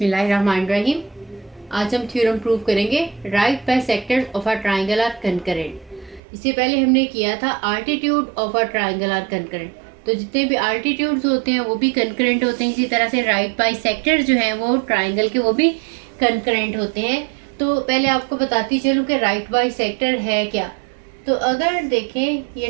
आज हम थ्योरम प्रूव करेंगे right bisectors of a triangle are concurrent. इससे पहले हमने किया था altitude of a triangle are concurrent. तो जितने भी आल्टीट्यूड्स होते हैं वो भी कंकरेंट होते हैं। इसी तरह से राइट बाय सेक्टर जो हैं वो ट्राइंगल के वो भी कंकरेंट होते हैं। तो पहले आपको बताती चलूँ कि राइट बाय सेक्टर है क्या। तो अगर देखें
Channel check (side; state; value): left; drops out; at 6.2 s